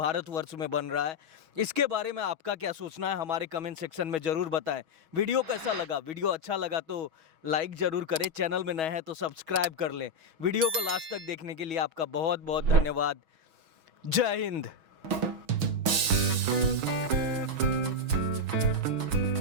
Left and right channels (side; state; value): left; late; 6.2 ms